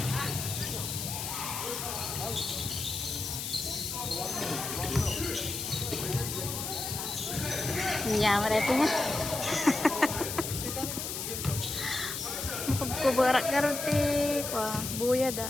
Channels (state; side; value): noise; left; hiss, 4 dB below the sound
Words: Nyaman na ito nga. Kubarak karon ti kwa buya da